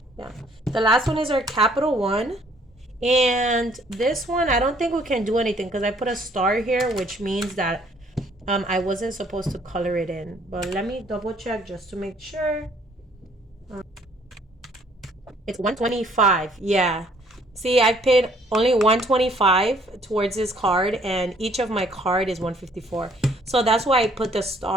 the last one is our capital one. And this one, I don't think we can do anything because I put a star here, which means that I wasn't supposed to color it in. But let me double check just to make sure. It's 125. Yeah. See, I paid only 125 towards this card, and each of my card is 154. So that's why I put the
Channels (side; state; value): both; normal; correlation 0.62